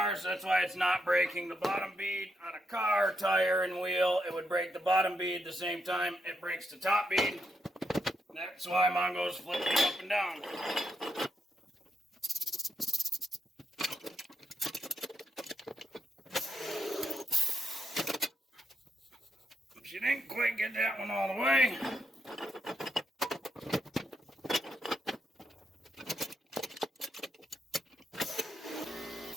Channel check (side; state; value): both; normal; correlation 0.81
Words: so that's why it's not breaking the bottom bead. On a car, tire, and wheel, it would break the bottom bead the same time it breaks the top bead. That's why Mongo's flipping up and down. She didn't quite get that one all the way.